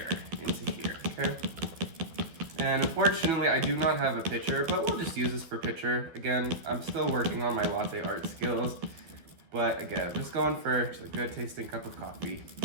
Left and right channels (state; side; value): late; left; 12 ms